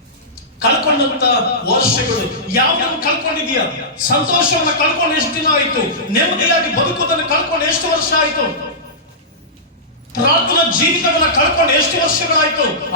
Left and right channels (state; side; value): normal; both; correlation -0.16